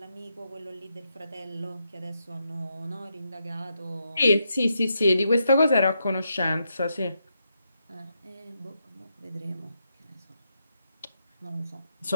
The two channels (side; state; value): both; inverted; correlation -0.82